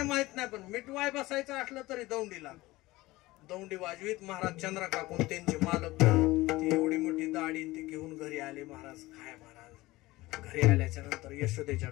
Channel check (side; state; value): right; quieter; 19.3 dB